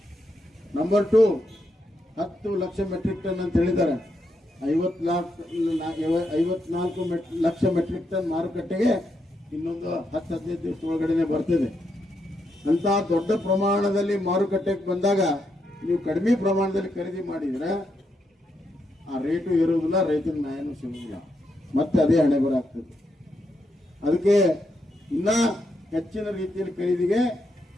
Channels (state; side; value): normal; both; correlation 0.81